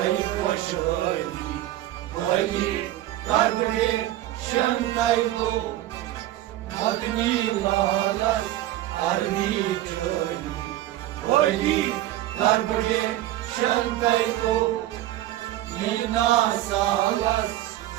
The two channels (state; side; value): quieter; left; 14.6 dB